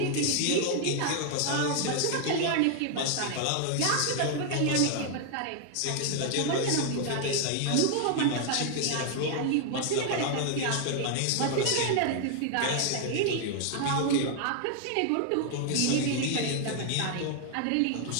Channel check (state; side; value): different; both; correlation 0.00